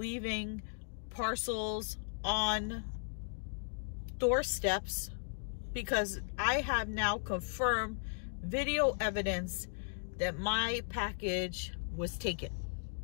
parcels on doorsteps, because I have now confirmed video evidence that my package was taken.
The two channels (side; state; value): right; silent; digital silence